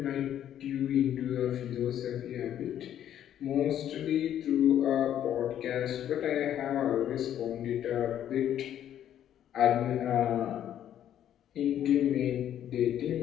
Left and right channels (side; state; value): right; quieter; 10.7 dB